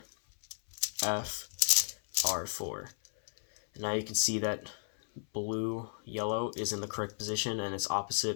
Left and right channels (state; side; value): silent; right; 55 dB below the other